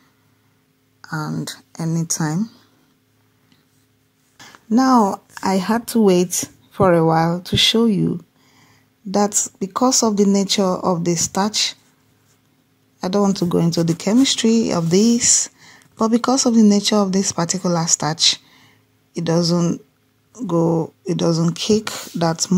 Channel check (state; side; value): identical; both; correlation 1.00